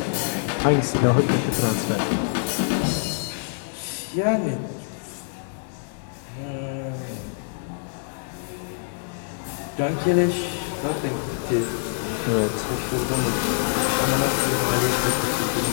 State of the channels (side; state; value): right; silent; digital silence